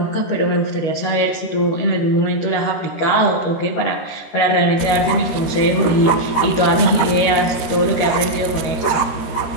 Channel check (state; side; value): late; right; 13 ms